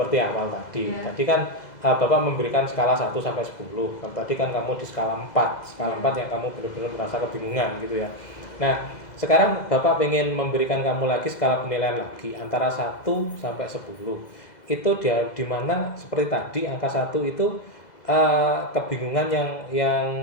awal tadi. Iya. Tadi kan Bapak memberikan skala 1 sampai 10. Kalau tadi kan kamu di skala 4. Skala 4 yang kamu benar-benar merasa kebingungan gitu ya. Nah, sekarang Bapak ingin memberikan kamu lagi skala penilaian lagi antara 1 sampai 10. Itu dia di mana seperti tadi angka 1 itu kebingungan yang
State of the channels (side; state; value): right; late; 2.0 ms